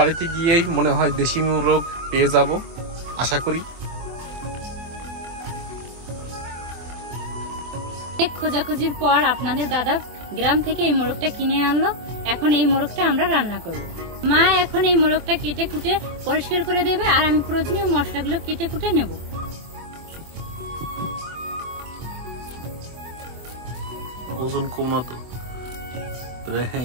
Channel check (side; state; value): left; late; 24 ms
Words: গিয়েই মনে হয় দেশি মোরগ পেয়ে যাব আশা করি। খোঁজাখুঁজির পর আপনাদের দাদা গ্রাম থেকে এই মোরগটা কিনে আনলো। এখন এই মোরগটা আমরা রান্না করব। মা এখন এই মোরগটা কেটে কুটে পরিষ্কার করে দেবে, আর আমি প্রয়োজনীয় মশলাগুলো কেটে কুটে নেব। ওজন কম না তো,